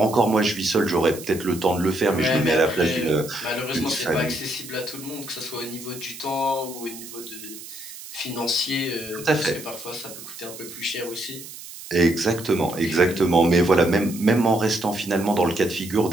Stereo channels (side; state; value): right; noise; hiss, 14 dB below the sound